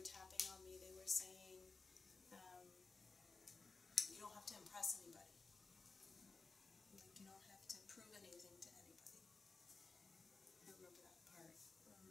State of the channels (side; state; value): right; quieter; 4.2 dB